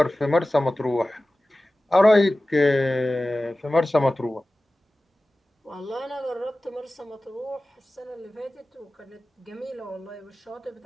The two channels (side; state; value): both; normal; correlation 0.96